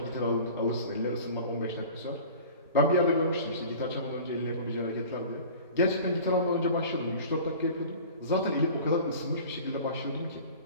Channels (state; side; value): inverted; both; correlation -0.41